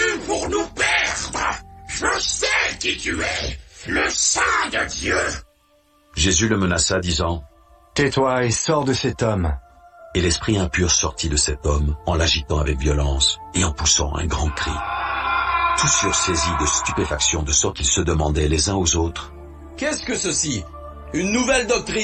pour nous perdre. Je sais qui tu es, le Saint de Dieu. » Jésus le menaça, disant, « Tais-toi et sors de cet homme. » Et l'esprit impur sortit de cet homme, en l'agitant avec violence, et en poussant un grand cri. Tous furent saisis de stupéfaction, de sorte qu'ils se demandaient les uns aux autres, « Qu'est-ce que ceci? Une nouvelle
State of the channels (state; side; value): identical; both; correlation 1.00